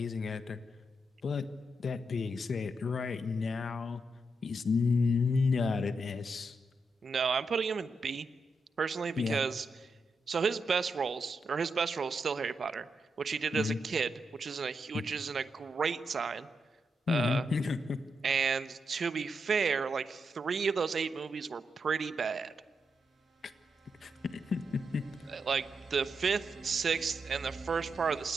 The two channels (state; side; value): normal; both; correlation 0.84